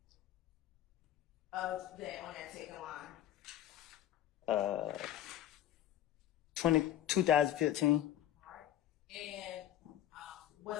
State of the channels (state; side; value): quieter; right; 12.1 dB